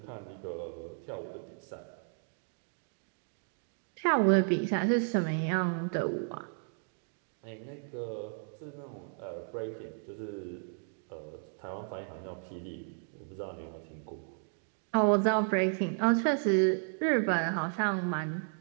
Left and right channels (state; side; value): silent; left; 55 dB below the other